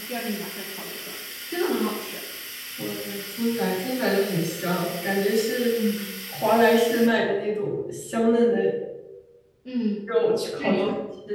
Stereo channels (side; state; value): both; identical; correlation 1.00